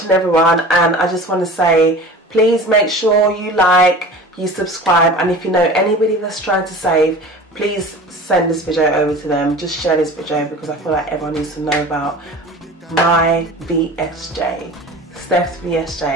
everyone, and I just want to say, please make sure you like, you subscribe, and if you know anybody that's trying to save, please send this video over to them. Just share this video because I feel like everyone needs to know about my VSJ, Steph's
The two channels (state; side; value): normal; both; correlation 0.38